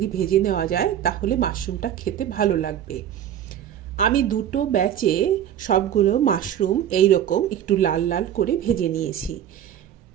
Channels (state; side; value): quieter; left; 10.4 dB